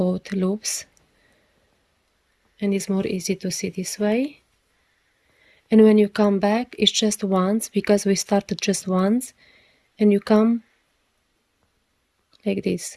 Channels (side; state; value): both; identical; correlation 1.00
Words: loops. And it's more easy to see this way. And when you come back, it's just once, because we started just once, and you come like this.